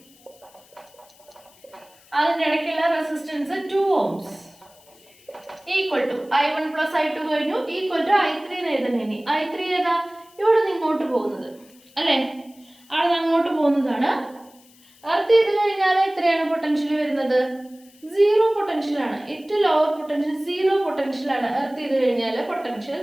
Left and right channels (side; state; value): left; noise; hiss, 28 dB below the sound